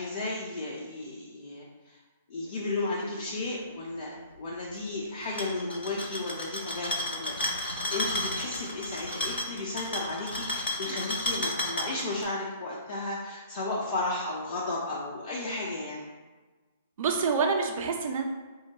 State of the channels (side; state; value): both; inverted; correlation -0.44